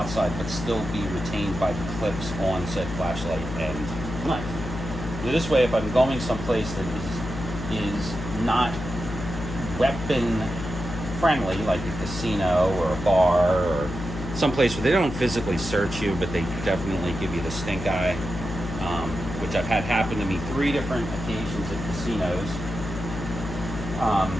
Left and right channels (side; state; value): left; noise; hum, 8 dB below the sound